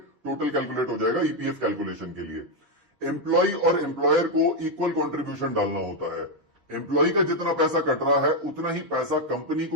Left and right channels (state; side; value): late; left; 6.9 ms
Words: टोटल कैलकुलेट हो जाएगा ईपीएफ कैलकुलेशन के लिए। एम्प्लॉय और एम्प्लॉयर को इक्वल कंट्रीब्यूशन डालना होता है। एम्प्लॉय का जितना पैसा कट रहा है उतना ही पैसा कंपनी